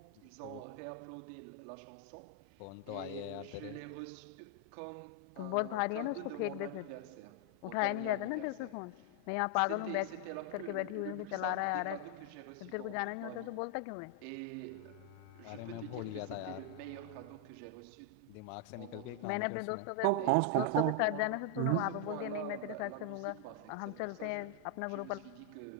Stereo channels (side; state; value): both; different; correlation 0.00